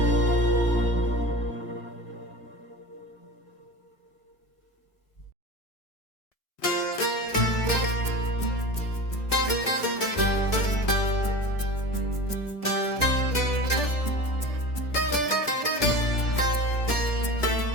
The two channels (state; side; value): late; right; 1.7 ms